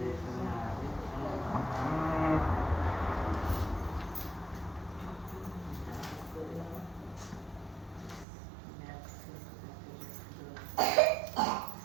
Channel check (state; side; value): drops out; left; at 8.2 s